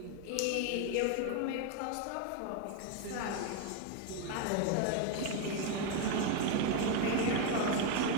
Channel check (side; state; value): both; different; correlation 0.01